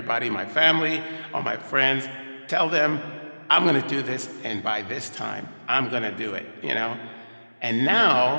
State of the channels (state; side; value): inverted; both; correlation -1.00